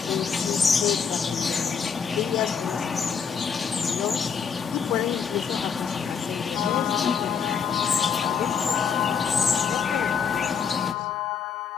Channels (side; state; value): right; quieter; 6.6 dB